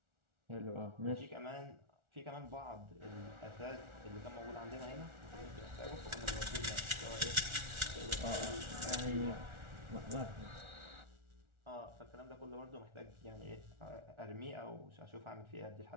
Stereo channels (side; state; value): left; late; 1.4 ms